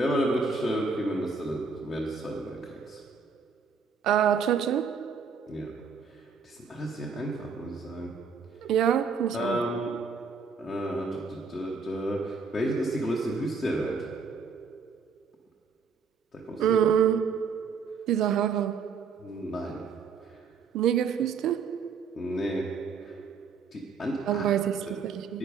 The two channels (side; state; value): left; quieter; 5.3 dB